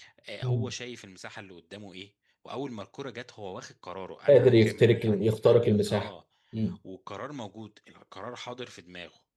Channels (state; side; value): identical; both; correlation 1.00